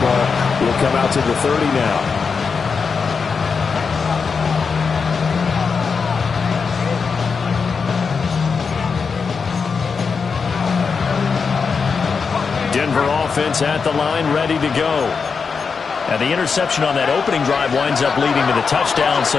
ball will come out to the 30 now. Denver offense at the line, ready to go. And the interception on that opening drive winds up leading to the touchdown, so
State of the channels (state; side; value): quieter; right; 5.4 dB